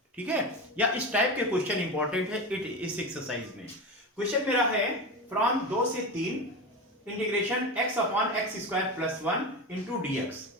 ठीक है, या इस टाइप के क्वेश्चन इंपॉर्टेंट है इस एक्सरसाइज में. क्वेश्चन मेरा है फ्रॉम 2 से 3 integration x upon x square plus 1 into dx.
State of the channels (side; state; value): both; normal; correlation 0.23